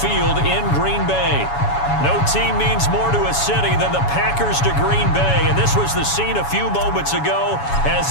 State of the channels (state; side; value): late; right; 7.1 ms